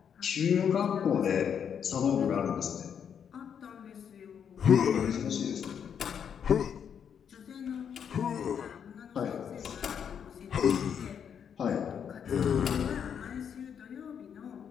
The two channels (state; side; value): quieter; right; 7.9 dB